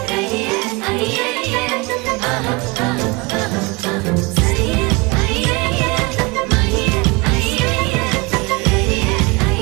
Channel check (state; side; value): quieter; left; 26.9 dB